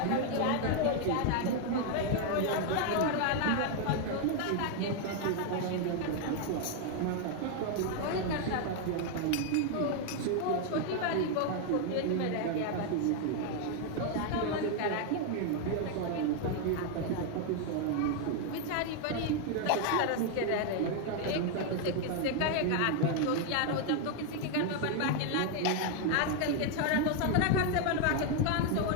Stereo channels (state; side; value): different; both; correlation 0.01